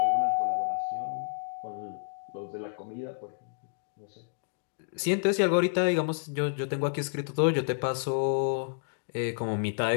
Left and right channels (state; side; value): silent; right; digital silence